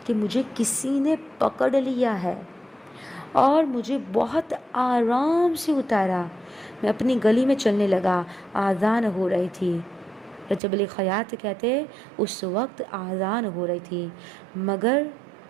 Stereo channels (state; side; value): drops out; left; at 10.6 s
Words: کہ مجھے کسی نے پکڑ لیا ہے اور مجھے بہت آرام سے اتارا۔ میں اپنی گلی میں چلنے لگا، آذان ہو رہی تھی۔ رجب علی خیاط کہتے اس وقت آذان ہو رہی تھی، مگر